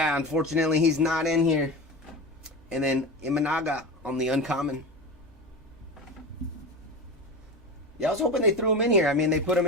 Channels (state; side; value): normal; both; correlation 0.26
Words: unfortunately he's not in here. And then Imanaga on the uncommon. Yeah, I was hoping they threw him in here. I mean, they put him